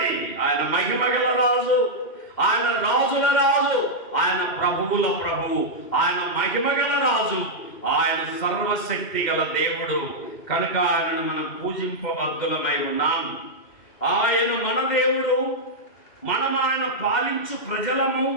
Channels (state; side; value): late; right; 2.1 ms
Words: ఆయన మహిమ గల రాజు, ఆయన రాజుల రాజు, ఆయన ప్రభువుల ప్రభువు, ఆయన మహిమ గల రాజు, ఆయన సర్వశక్తి గల దేవుడు. కనుక ఆయనను మనం పూజింపబద్ధులమై ఉన్నాం. ఆయన మన దేవుడు, మనం ఆయన పాలించు ప్రజలము,